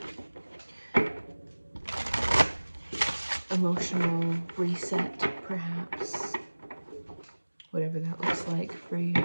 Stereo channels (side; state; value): both; inverted; correlation -1.00